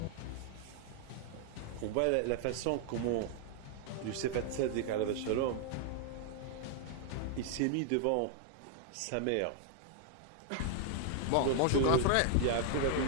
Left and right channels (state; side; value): different; both; correlation 0.00